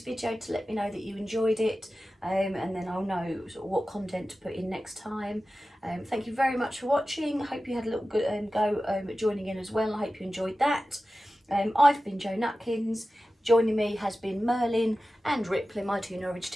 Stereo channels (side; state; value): both; normal; correlation 0.95